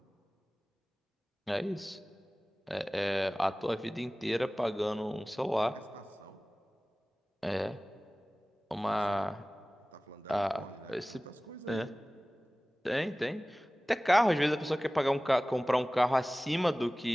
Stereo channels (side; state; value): both; normal; correlation 0.98